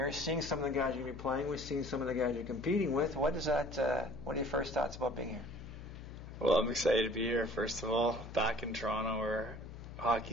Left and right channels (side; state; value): left; noise; hum, 12 dB below the sound